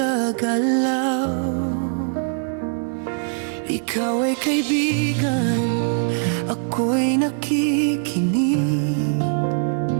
Ikaw ay kaibigan, ako'y nakikinig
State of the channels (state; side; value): silent; left; digital silence